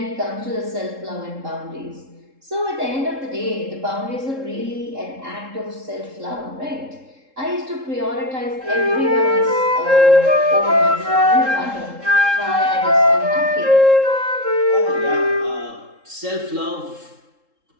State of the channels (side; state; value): left; late; 3.7 ms